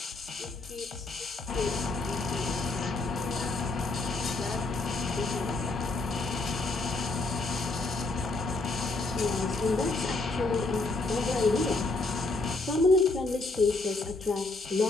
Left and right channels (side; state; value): right; quieter; 3.2 dB